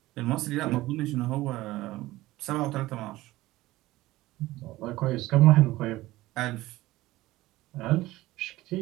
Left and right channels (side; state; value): left; quieter; 17.6 dB